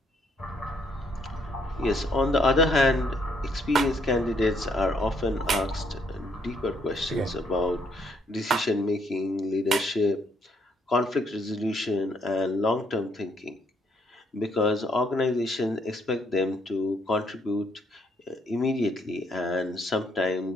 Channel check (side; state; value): both; normal; correlation 0.70